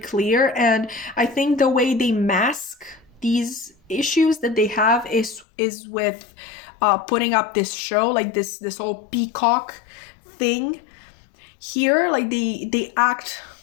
and I think the way they mask these issues that they have is with putting up this show, like this whole peacock thing here. Like they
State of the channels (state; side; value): drops out; right; at 5.5 s